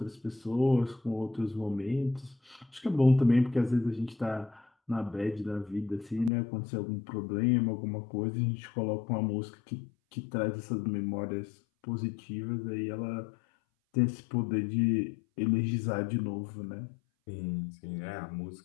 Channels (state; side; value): drops out; right; at 6.3 s